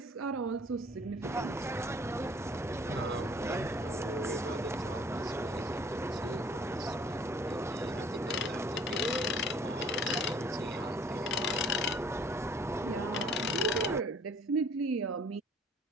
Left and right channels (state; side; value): normal; both; correlation 0.55